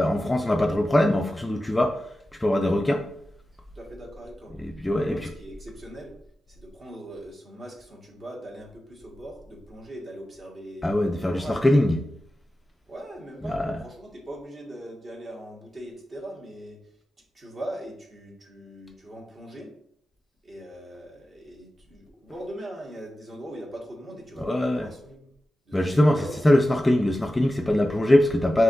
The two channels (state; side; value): normal; both; correlation 0.94